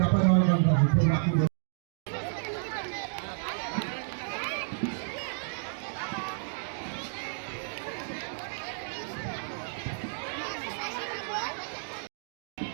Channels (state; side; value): silent; left; digital silence